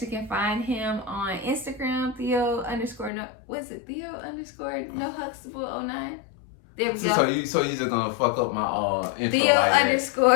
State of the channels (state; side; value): drops out; right; at 3.1 s